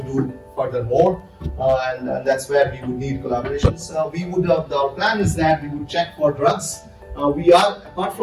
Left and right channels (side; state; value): both; identical; correlation 1.00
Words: do further more, and that's where we would need collaborations. Our plan is that we would check for drugs. We are, apart